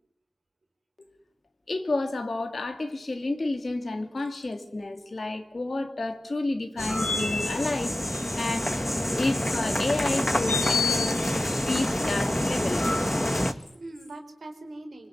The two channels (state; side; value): normal; both; correlation 0.93